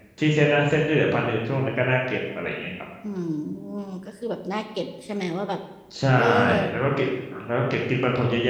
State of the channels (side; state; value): both; identical; correlation 1.00